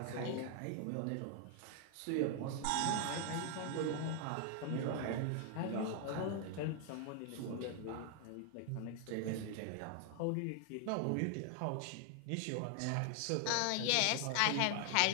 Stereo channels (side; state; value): both; different; correlation 0.00